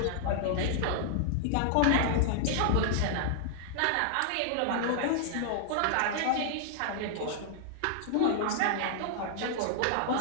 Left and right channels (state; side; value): different; both; correlation -0.01